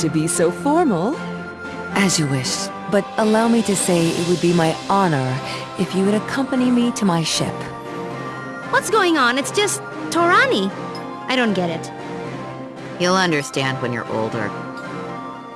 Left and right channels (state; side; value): identical; both; correlation 1.00